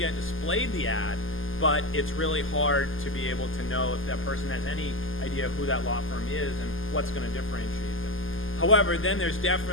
displayed the ad, but it's really hard to be able to know if that person has any idea who that law firm is and what's going to differentiate them. However, then there's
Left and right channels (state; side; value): late; right; 0.59 ms